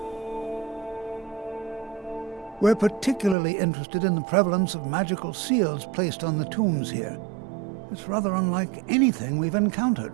We're particularly interested in the prevalence of magical seals placed on the tombs here. It's rather unlike anything we've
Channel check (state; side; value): drops out; left; at 3.4 s